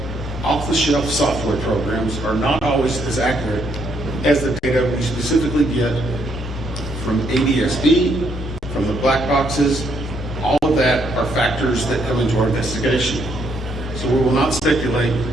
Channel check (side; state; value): both; normal; correlation 0.72